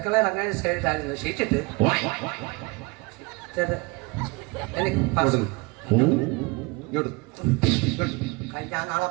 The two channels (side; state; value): left; quieter; 26.6 dB